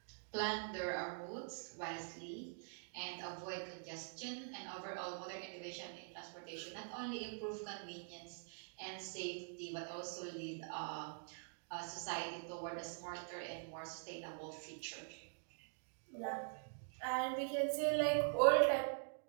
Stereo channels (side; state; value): left; silent; digital silence